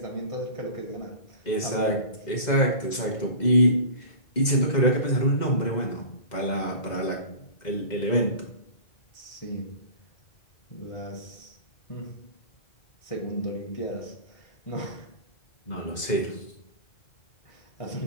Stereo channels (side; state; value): right; late; 2.1 ms